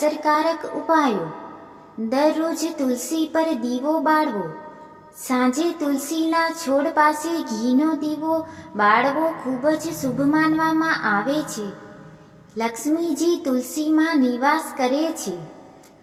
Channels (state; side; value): identical; both; correlation 1.00